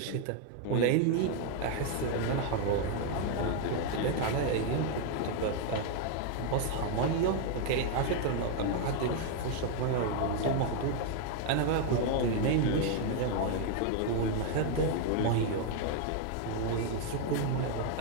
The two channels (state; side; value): different; both; correlation 0.00